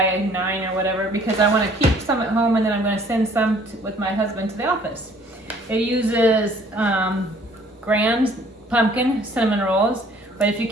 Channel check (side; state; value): both; normal; correlation 0.57